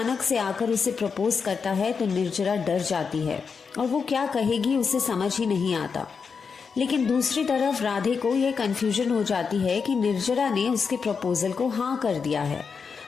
से आकर उसे प्रपोज करता है तो निर्जरा डर जाती है और वो क्या कहेगी उसे समझ ही नहीं आता। लेकिन दूसरी तरफ राधे को यह कंफ्यूजन हो जाती है कि निर्जरा ने उसके प्रपोजल को हाँ कर दिया है।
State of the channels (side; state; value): right; quieter; 5.6 dB